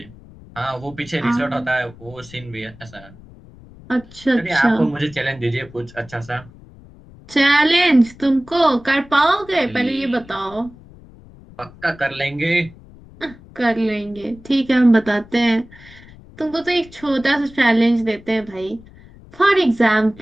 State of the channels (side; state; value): left; noise; rumble, 22 dB below the sound